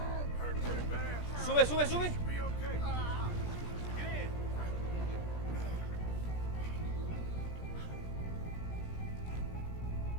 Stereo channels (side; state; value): right; late; 17 ms